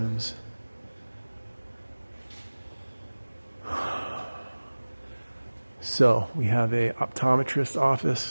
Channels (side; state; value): both; inverted; correlation -1.00